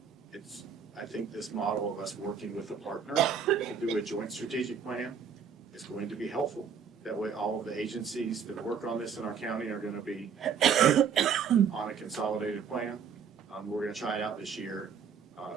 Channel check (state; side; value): quieter; left; 6.9 dB